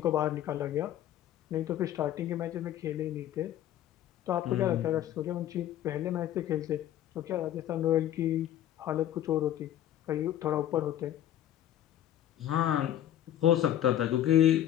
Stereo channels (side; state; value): right; quieter; 11.9 dB